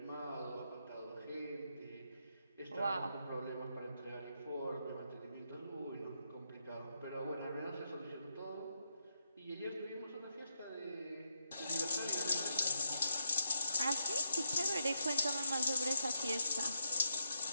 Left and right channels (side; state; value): both; inverted; correlation -0.81